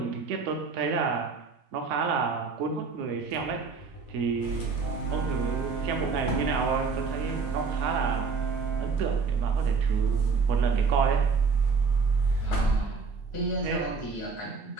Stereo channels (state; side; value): quieter; left; 4.9 dB